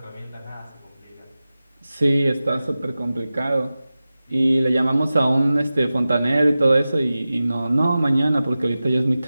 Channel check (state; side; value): inverted; both; correlation -0.95